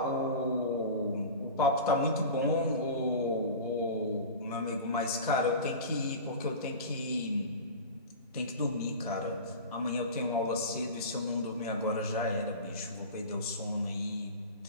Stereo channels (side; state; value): both; inverted; correlation -0.31